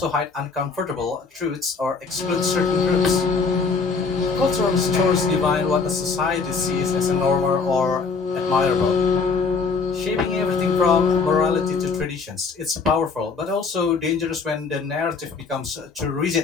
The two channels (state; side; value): quieter; right; 4.8 dB